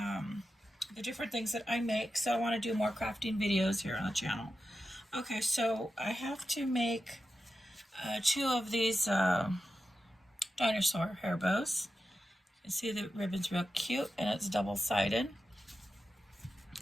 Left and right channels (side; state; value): both; normal; correlation 0.91